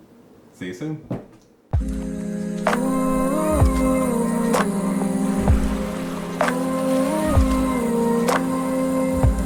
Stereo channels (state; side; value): identical; both; correlation 1.00